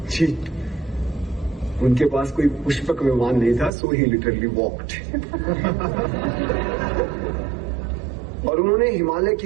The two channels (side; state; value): left; drops out; at 3.7 s